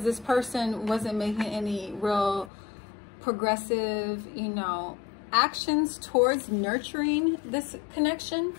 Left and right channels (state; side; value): drops out; right; at 2.5 s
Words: this person wasn't making any real progressive, you know, actions towards nurturing this connection.